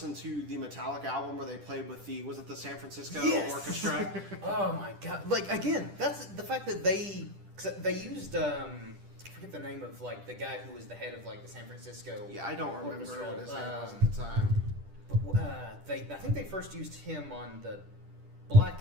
to the Metallica album where they played with was it the San Francisco Orchestra? Oh my god! Like again, that's the fact that they used I forget the name of like the guy who was the head of like the San Francisco. Yeah, I don't remember what his name was at the time. But I think they first used him on the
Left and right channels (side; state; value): left; late; 10 ms